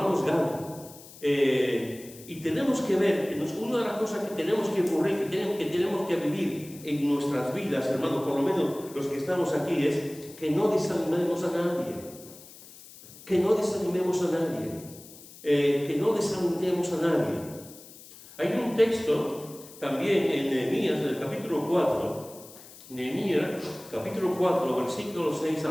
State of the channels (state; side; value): noise; left; hiss, 19 dB below the sound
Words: ganan. Y tenemos que ver, una de las cosas que tenemos que ocurrir, que tenemos que vivir en nuestras vidas, hermanos, por lo menos los que estamos aquí, es que no desanimemos a nadie. Que no desanimemos a nadie. Que no desalentemos a nadie. Hay un texto también en Nehemías, del capítulo 4, Nehemías, capítulo 4, versículos 6